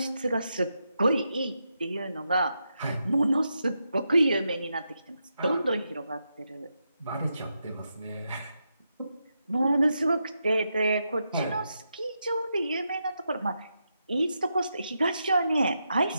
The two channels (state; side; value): inverted; both; correlation -0.85